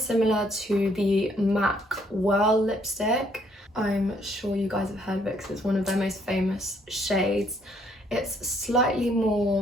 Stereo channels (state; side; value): normal; both; correlation 0.67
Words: to the MAC Whirl lipstick. I'm sure you guys have heard of it because it's one of their most famous shades. It's slightly